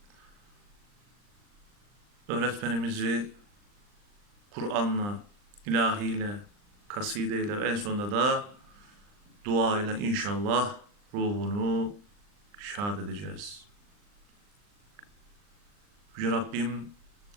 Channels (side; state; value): left; late; 39 ms